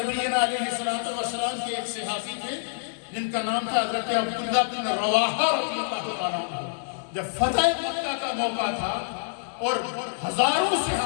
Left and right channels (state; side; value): silent; right; digital silence